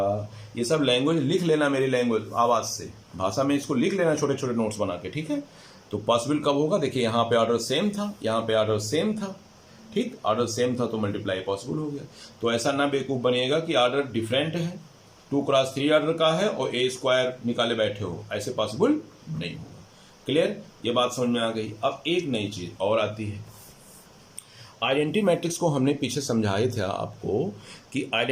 ये सब लैंग्वेज लिख लेना, मेरी लैंग्वेज आवाज से, भाषा में इसको लिख लेना छोटे छोटे नोट्स बना के, ठीक है। तो पॉसिबल कब होगा, देखिए यहाँ पे ऑर्डर सेम था, यहाँ पे ऑर्डर सेम था, ठीक, ऑर्डर सेम था तो मल्टीप्लाई पॉसिबल हो गया। तो ऐसा ना बेवकूफ बनिएगा कि ऑर्डर डिफरेंट है, 2x3 ऑर्डर का है और ए स्क्वायर निकाले बैठे हो, ऐसे पॉसिबल नहीं होगा। क्लियर, ये बात समझ में आ गई। अब एक नई चीज और आती है, आइडेंटिटी मैट्रिक्स को हमने पीछे समझाए थे आपको कि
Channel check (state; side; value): identical; both; correlation 1.00